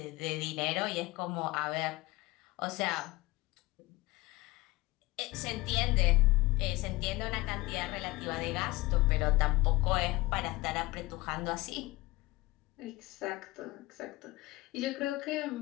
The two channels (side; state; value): right; quieter; 20.5 dB